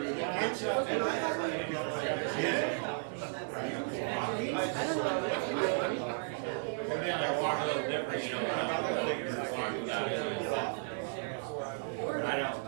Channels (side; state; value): left; silent; digital silence